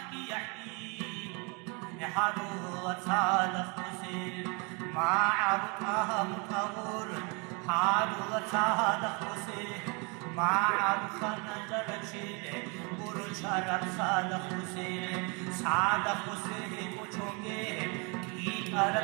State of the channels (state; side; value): quieter; left; 32.0 dB